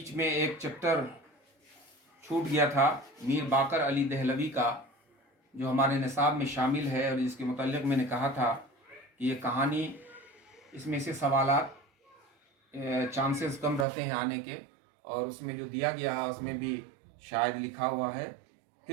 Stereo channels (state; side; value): drops out; left; at 13.9 s